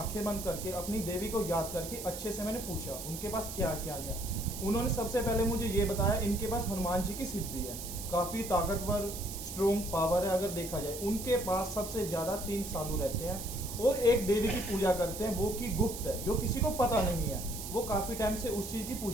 बंद करके अपनी देवी को याद करके अच्छे से मैंने पूछा उनके पास क्या क्या लिया। उन्होंने सबसे पहले मुझे ये बताया इनके पास हनुमान जी की सिद्धि है, काफी ताकतवर स्ट्रोंग पावर है। अगर देखा जाए उनके पास सबसे ज्यादा 3 साधु रहते हैं और एक देवी की पूजा करते हैं, वो की गुप्त है, जो किसी को पता नहीं है। वो काफी टाइम से उस चीज की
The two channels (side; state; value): right; noise; hiss, 9 dB below the sound